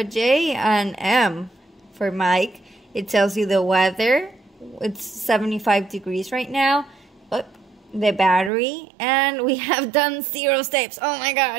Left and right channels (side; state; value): left; drops out; at 8.5 s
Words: J, an M for Mike. It tells you the weather. It's 75 degrees right now. Oh, the battery. And we have done 0 steps. Oh my